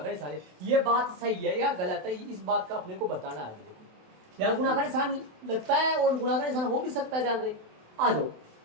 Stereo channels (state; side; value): late; left; 27 ms